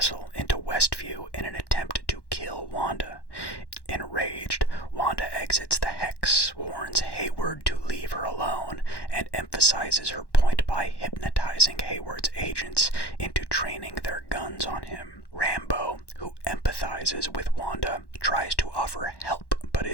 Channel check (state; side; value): late; right; 1.1 ms